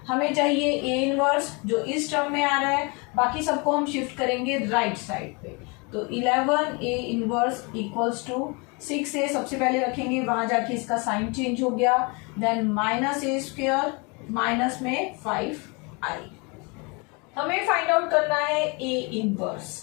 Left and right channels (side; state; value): right; quieter; 30.3 dB